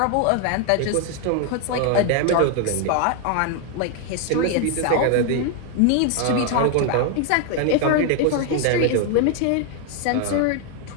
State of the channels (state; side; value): different; both; correlation 0.01